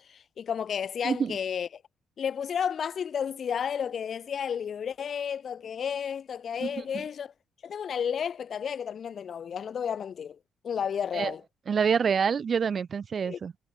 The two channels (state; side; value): normal; both; correlation 0.76